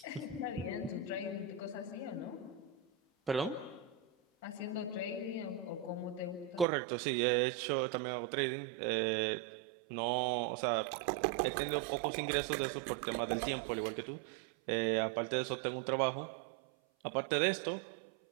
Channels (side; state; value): left; drops out; at 6.7 s